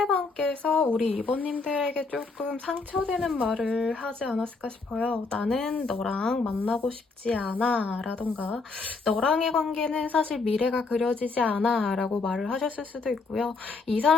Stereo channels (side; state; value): right; quieter; 4.1 dB